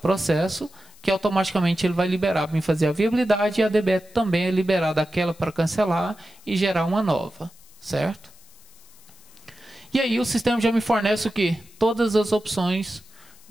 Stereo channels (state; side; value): noise; left; hiss, 26 dB below the sound